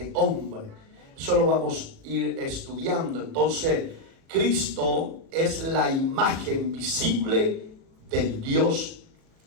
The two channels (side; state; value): left; late; 37 ms